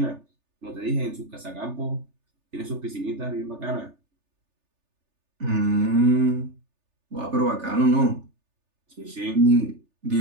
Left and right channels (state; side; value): late; left; 3.4 ms